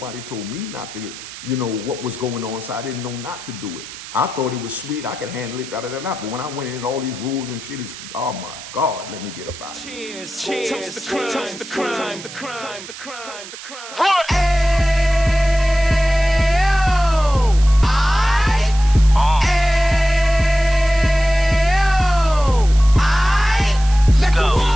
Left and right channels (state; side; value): noise; right; hiss, 14 dB below the sound